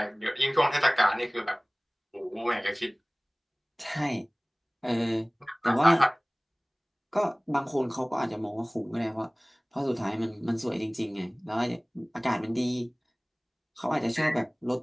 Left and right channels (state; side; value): identical; both; correlation 1.00